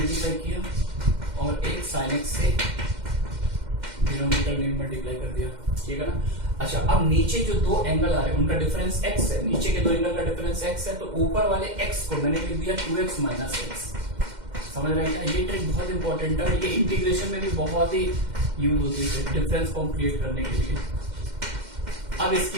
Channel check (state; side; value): late; left; 2.1 ms